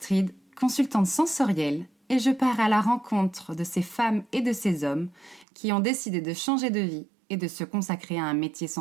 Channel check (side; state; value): left; drops out; at 5.5 s